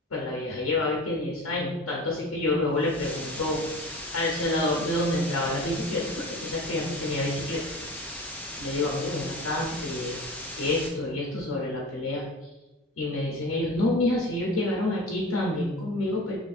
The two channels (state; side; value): normal; both; correlation 0.35